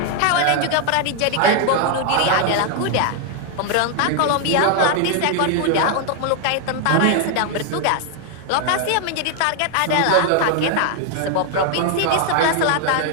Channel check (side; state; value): both; different; correlation 0.00